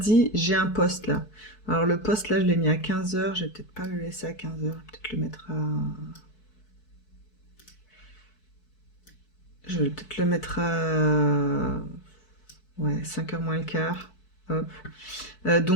j'ai un post là. Alors le post là, je l'ai mis à 15h. Je vais peut-être pas le laisser à 15h. Peut-être le mettre à... Je vais peut-être le mettre à... Ouais, 5h moins le quart. Hop.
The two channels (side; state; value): right; late; 4.6 ms